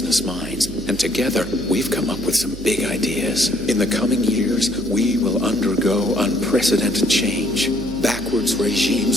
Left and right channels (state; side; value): noise; right; hum, 12 dB below the sound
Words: minds, and together we've come up with some big ideas. In the coming years, we will undergo unprecedented change. Backwards